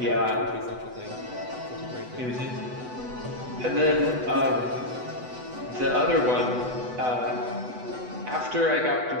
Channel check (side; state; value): left; late; 8.0 ms